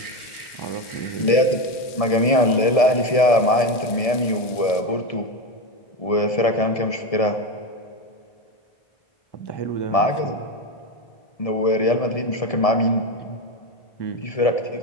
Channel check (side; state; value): right; late; 1.7 ms